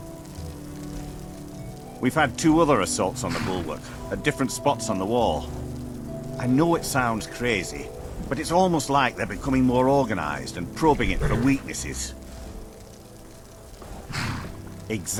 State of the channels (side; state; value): both; identical; correlation 1.00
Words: We've had 2 other assaults on the bulwark, at different spots on the wall. I know it sounds crazy, but it's almost like they're becoming more organized and probing it for weaknesses.